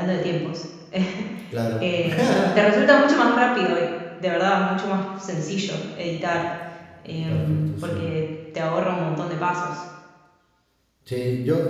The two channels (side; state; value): both; identical; correlation 1.00